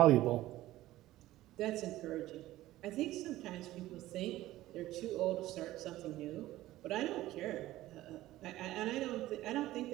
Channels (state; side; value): quieter; left; 15.8 dB